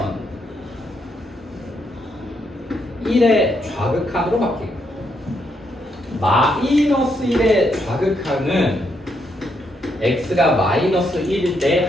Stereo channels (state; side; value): normal; both; correlation 0.77